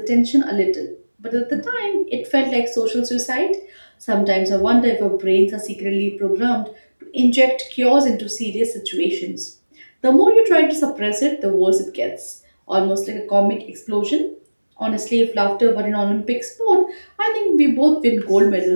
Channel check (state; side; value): inverted; both; correlation -1.00